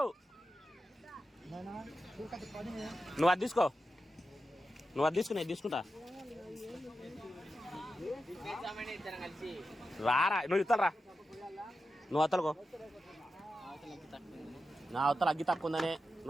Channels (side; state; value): both; normal; correlation 0.90